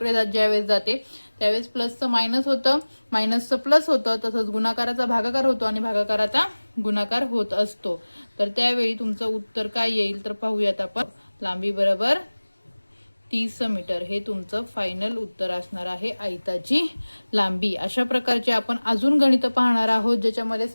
ज्यावेळेस जाते त्यावेळेस प्लसचं मायनस होतं, मायनसचं प्लस होतं, तसंच गुणाकाराचा भागाकार होतो आणि भागाकाराचा गुणाकार होत असतो. तर त्यावेळी तुमचं उत्तर काय येईल तर पाहूयात आपण. लांबी बरोबर 30 मीटर हे तुमचं फायनल उत्तर असणार आहे, आयताची लांबी. अशा प्रकारचे आपण अजून गणित पाहणार आहोत ज्याच्यामध्ये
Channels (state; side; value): inverted; both; correlation -1.00